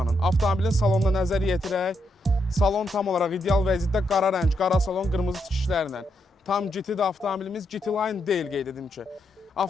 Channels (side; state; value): both; normal; correlation 0.80